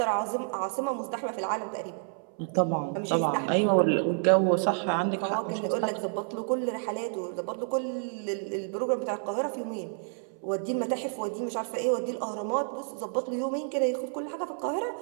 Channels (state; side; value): silent; left; 58 dB below the other